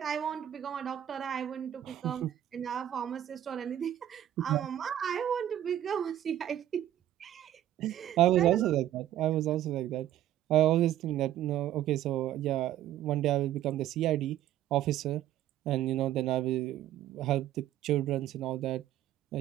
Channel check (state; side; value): quieter; left; 12.1 dB